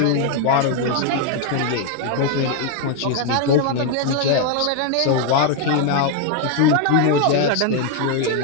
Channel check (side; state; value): both; different; correlation 0.01